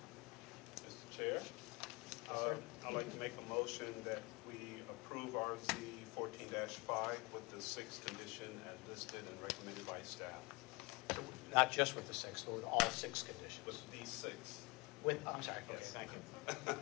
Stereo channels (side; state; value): right; quieter; 26.5 dB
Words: Mr. Chair, I'd like to make a motion that we approve RZ 14-5 with the 6th condition as listed and recommended by staff. Not just with the 6, but with all 6 conditions. With these 6. I'm sorry. Okay, Yes. thank you.